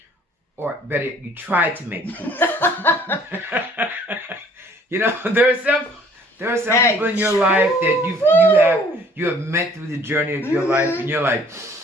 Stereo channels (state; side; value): normal; both; correlation 0.57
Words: Or better, you try to make peace. There are some people in your life that you have met through the journey of your life, and you're like,